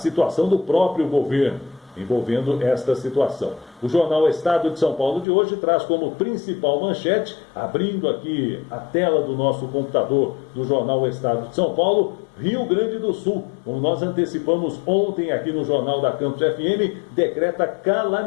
do próprio governo, envolvendo esta situação. O jornal Estado de São Paulo de hoje traz como principal manchete, abrindo aqui a tela do nosso computador do jornal Estado de São Paulo, Rio Grande do Sul, como nós antecipamos ontem aqui no Jornal da Campus FM, decreta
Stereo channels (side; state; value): right; drops out; at 5.2 s